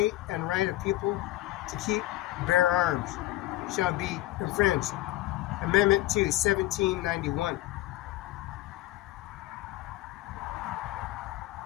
and right of people to keep, bear arms, shall be infringed. Amendment 2, 1791.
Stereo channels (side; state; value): right; quieter; 16.0 dB